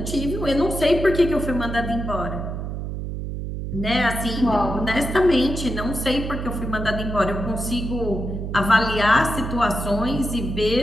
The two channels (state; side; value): noise; right; hum, 5 dB below the sound